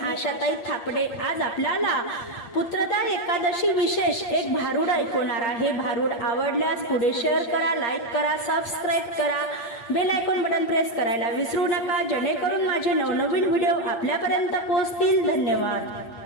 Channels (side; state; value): right; late; 8.6 ms